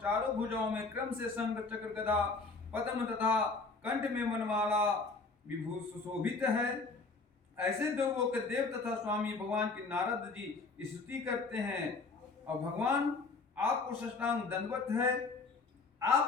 चारों भुजाओं में क्रम से शंख चक्र गदा पद्म तथा कंठ में मनमाला विभूषित सुशोभित है। ऐसे देवों के देव तथा स्वामी भगवान की नारद जी स्तुति करते हैं और भगवान आपको साष्टांग दंडवत है।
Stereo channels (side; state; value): right; quieter; 4.0 dB